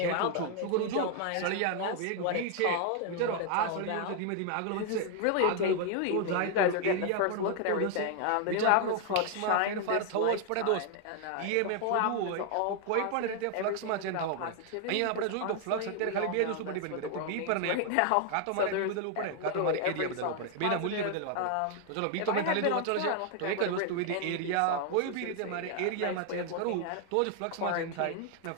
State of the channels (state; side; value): different; both; correlation 0.00